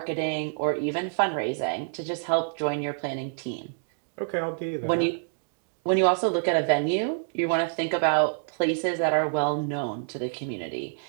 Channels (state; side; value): silent; left; digital silence